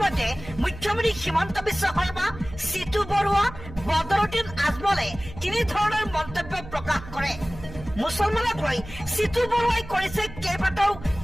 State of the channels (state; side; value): noise; right; hum, 14 dB below the sound